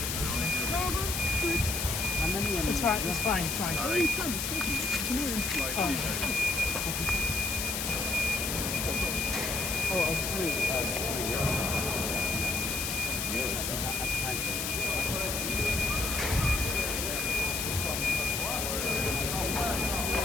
No, good. How many? It's fine. It's fine. It's fine. Oh, you can. It's talking. Come here. Oh, I was doing euros. That's fine.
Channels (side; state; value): left; noise; hiss, 1 dB below the sound